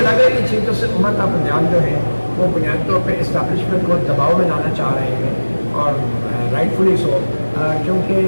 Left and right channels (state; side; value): inverted; both; correlation -1.00